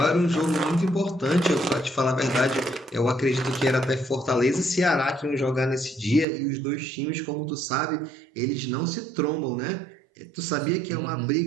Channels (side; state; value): left; drops out; at 6.2 s